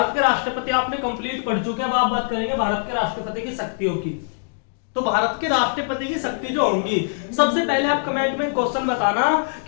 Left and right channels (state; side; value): silent; right; digital silence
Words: के राष्ट्रपति आपने कंप्लीट पढ़ चुके हैं, अब आप बात करेंगे भारत के राष्ट्रपति की शक्तियों की। तो भारत के राष्ट्रपति की शक्ति जो होंगी, सबसे पहले आप कमेंट में क्वेश्चन बताना